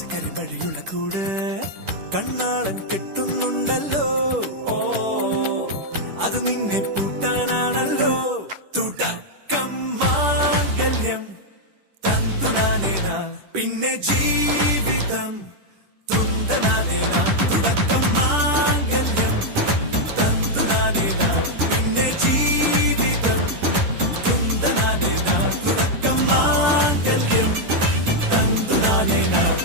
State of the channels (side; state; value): left; late; 10 ms